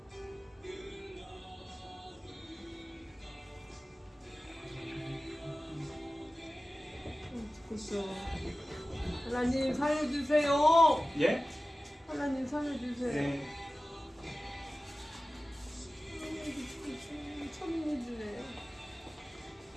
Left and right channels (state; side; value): normal; both; correlation 0.95